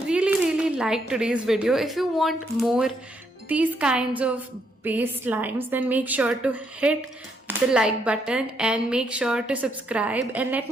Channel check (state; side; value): normal; both; correlation 0.75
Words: liked today's video. If you want more these kinds of base slimes, then make sure to hit the like button and make sure to subscribe and let